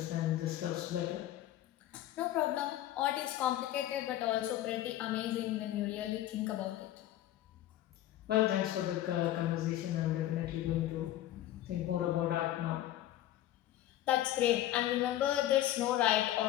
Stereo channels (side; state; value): right; quieter; 13.5 dB